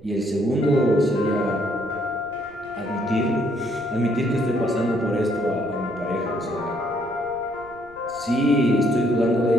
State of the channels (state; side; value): noise; right; rumble, 24 dB below the sound